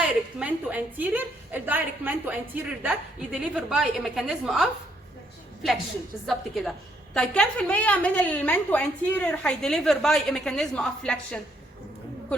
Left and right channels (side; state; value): both; normal; correlation 0.71